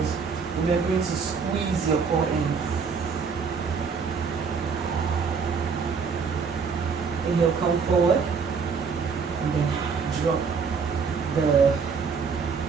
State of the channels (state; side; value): quieter; left; 5.6 dB